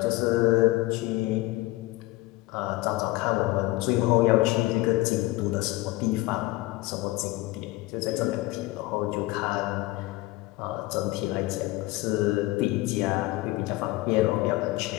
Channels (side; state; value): right; quieter; 19.5 dB